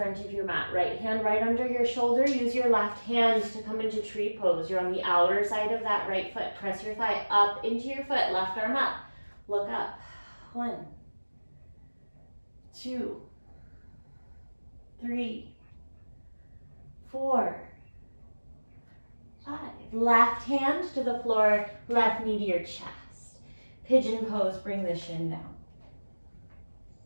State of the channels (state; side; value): inverted; both; correlation -1.00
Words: of your mat. Right hand right under your shoulder. Use your left hand to come into tree pose. You're on the outer side of that right foot. Press your thigh up into your foot. Left arm up. Look up. 1, 2, 3, 4, 5. Left hand to the floor. Left knee to your chest. Pigeon pose. Bring the shin down.